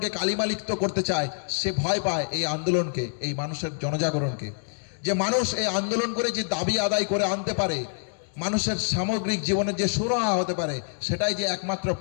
কালিমালিপ্ত করতে চায়, সে ভয় পায় এই আন্দোলনকে, এই মানুষের জনজাগরণকে, যে মানুষ এই আন্দোলন করে যে দাবি আদায় করে আনতে পারে, মানুষের সামগ্রিক জীবনের যে সুরাহা হতে পারে, সেটাই যে একমাত্র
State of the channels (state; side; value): silent; right; digital silence